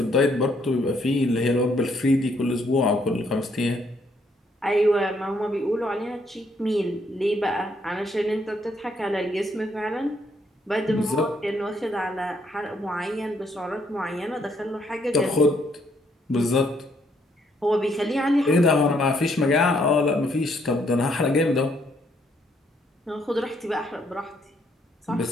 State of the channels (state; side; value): normal; both; correlation 0.71